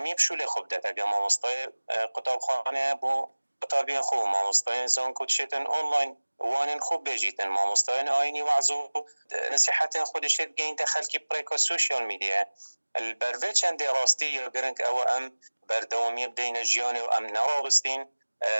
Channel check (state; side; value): inverted; both; correlation -1.00